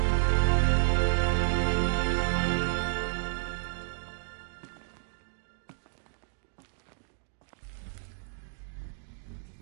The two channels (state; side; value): silent; left; digital silence